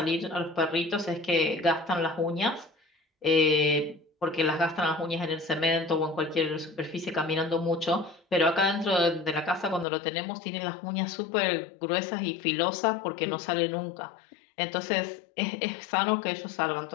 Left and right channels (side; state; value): right; drops out; at 9.9 s